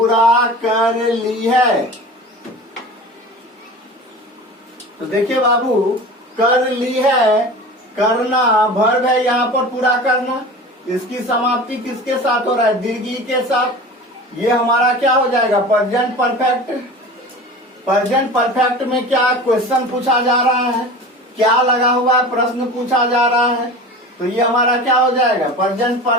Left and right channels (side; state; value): both; normal; correlation 0.35